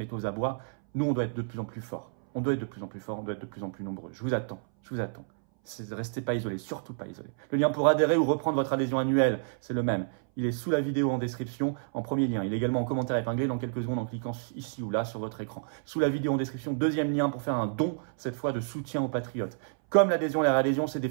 est aux abois. Nous, on doit être de plus en plus forts. On doit être de plus en plus forts, on doit être de plus en plus nombreux. Je vous attends, je vous attends. Restez pas isolés, surtout pas isolés. Le lien pour adhérer ou reprendre votre adhésion annuelle, c'est le même. Il est sous la vidéo en description, en premier lien. Il est également en commentaire épinglé dans quelques secondes en cliquant ici ou là sur votre écran. Sous la vidéo en description, deuxième lien pour faire un don, cette fois de soutien aux patriotes. Comme l'adhésion et la réadhésion, c'est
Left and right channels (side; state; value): left; silent; 58 dB below the other